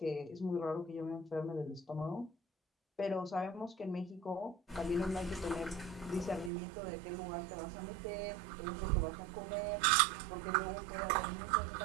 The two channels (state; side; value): drops out; left; at 6.5 s